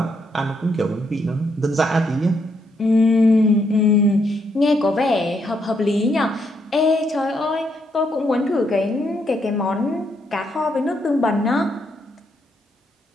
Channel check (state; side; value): normal; both; correlation 0.76